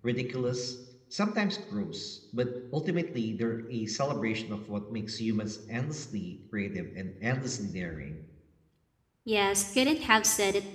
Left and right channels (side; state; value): both; identical; correlation 1.00